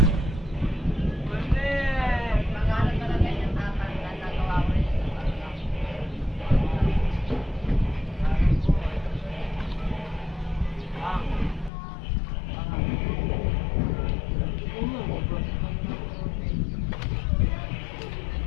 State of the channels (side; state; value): right; drops out; at 11.7 s